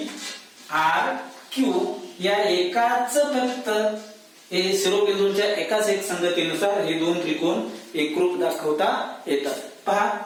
R Q या एकाच फक्त शिरोबिंदूंच्या एकाच एक संगतीनुसार हे 2 त्रिकोण एकरूप दाखवता येतात. पहा,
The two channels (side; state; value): both; identical; correlation 1.00